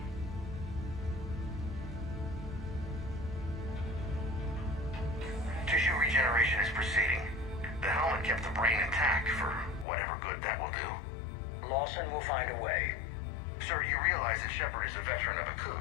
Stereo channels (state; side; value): drops out; right; at 9.9 s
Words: Tissue regeneration is proceeding. The helmet kept the brain intact for whatever good that will do. Lawson will find a way. Sir, you realize that Shepard is a veteran of a